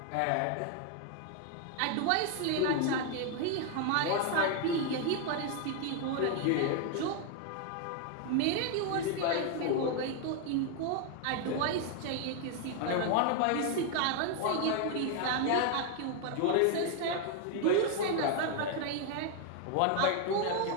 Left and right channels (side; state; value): both; different; correlation 0.00